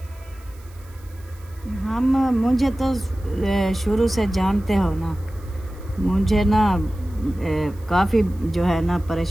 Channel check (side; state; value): right; noise; hiss, 27 dB below the sound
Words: मुझे तो शुरू से जानते हो ना, मुझे ना काफ़ी जो है ना